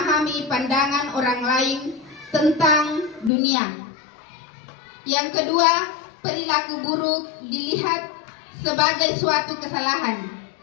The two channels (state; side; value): drops out; right; at 3.3 s